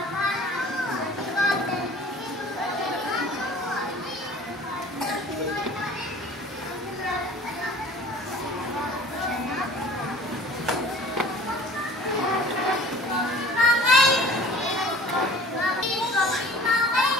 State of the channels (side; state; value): both; normal; correlation 0.46